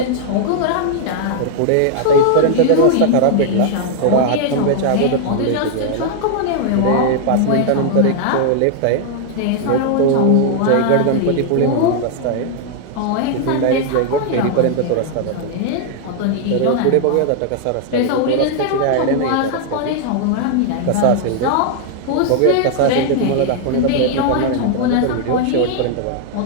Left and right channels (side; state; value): both; different; correlation 0.00